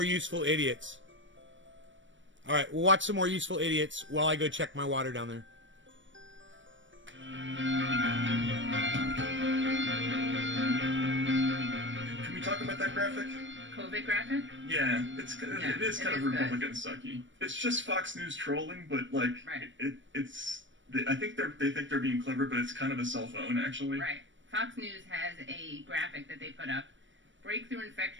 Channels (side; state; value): left; late; 0.55 ms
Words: useful idiots. All right, we'll watch some more useful idiots while I go check my water down there. Can we talk about that graphic? COVID graphic? Yeah, it is kind of good. Republican sucky. It's just Fox News trolling, but like Right. I think they think they're being clever, but it's kind of a cell phone actually. Right. Fox News has a graphic that they put up, breakthrough